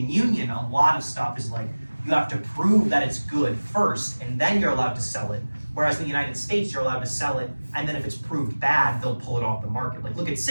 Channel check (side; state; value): both; inverted; correlation -1.00